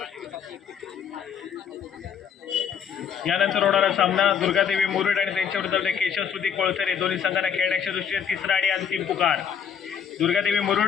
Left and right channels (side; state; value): right; quieter; 7.7 dB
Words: यानंतर होणारा सामना दुर्गादेवी मुरुड आणि त्यांच्या विरुद्ध केशवश्रुती कोळसरे दोन्ही संघांना खेळण्याच्या दृष्टीने तिसरा आणि अंतिम पुकार. दुर्गादेवी